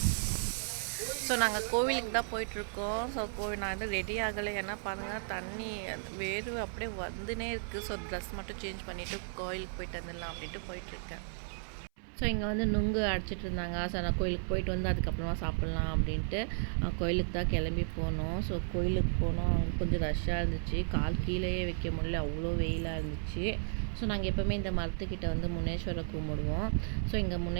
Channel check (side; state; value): left; silent; 55 dB below the other